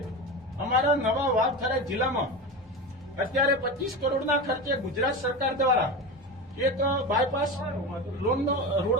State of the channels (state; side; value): normal; both; correlation 0.23